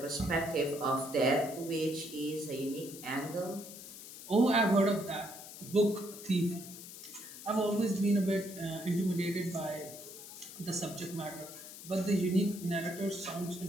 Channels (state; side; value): noise; left; hiss, 13 dB below the sound